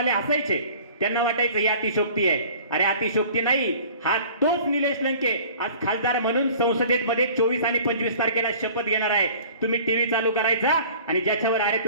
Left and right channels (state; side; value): inverted; both; correlation -0.47